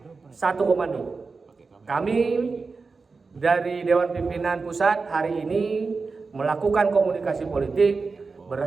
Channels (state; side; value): quieter; left; 4.4 dB